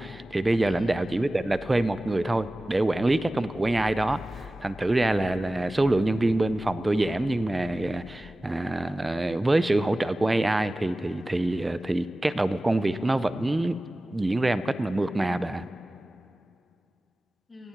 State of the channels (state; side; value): normal; both; correlation 0.97